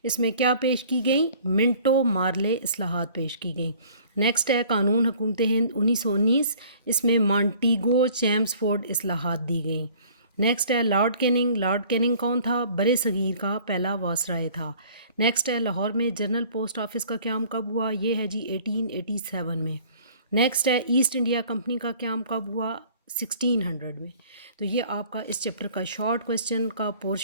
اس میں کیا پیش کی گئیں؟ منٹو مارلے اصلاحات پیش کی گئیں۔ نیکسٹ ہے قانون حکومت ہند 1919، اس میں مانٹیگو چیمسفورڈ اصلاحات دی گئیں۔ نیکسٹ ہے لارڈ کیننگ، لارڈ کیننگ کون تھا؟ برصغیر کا پہلا وائسرائے تھا۔ نیکسٹ ہے لاہور میں جنرل پوسٹ آفس کا قیام کب ہوا؟ یہ ہے جی 1887 میں۔ نیکسٹ ہے ایسٹ انڈیا کمپنی کا قیام کب ہوا؟ 1600 میں۔ تو یہ آپ کا اس چیپٹر کا شارٹ کوسچن کا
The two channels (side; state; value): both; inverted; correlation -0.52